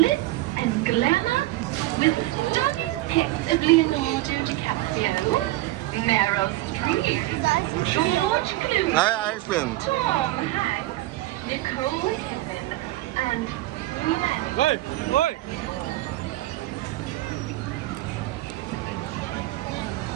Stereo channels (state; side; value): quieter; left; 17.5 dB